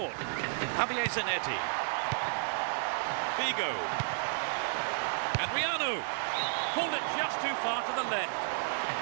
Javier Zanetti. Figo. Adriano. Pulled it just too far to the left.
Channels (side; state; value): left; silent; digital silence